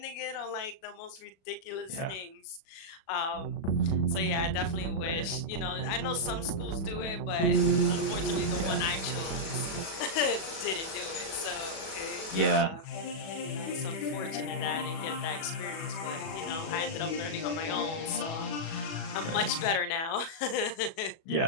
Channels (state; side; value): late; right; 37 ms